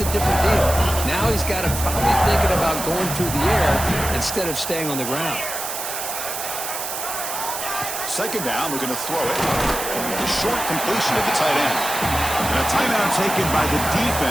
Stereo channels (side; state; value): right; noise; hiss, 5 dB below the sound